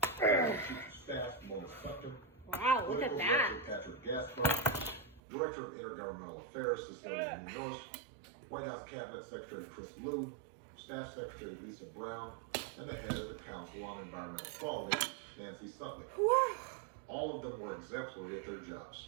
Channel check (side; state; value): left; drops out; at 5.2 s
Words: Chief of Staff Mona Sutton, wow, look at that, Patrick Gaspar, Director of Intergovernmental Affairs Cecilia Munoz, White House Cabinet Secretary Chris Liu, Staff Secretary Lisa Brown, and the head of the Council on Environmental Quality, Nancy Sutley. All of them were exemplary at their jobs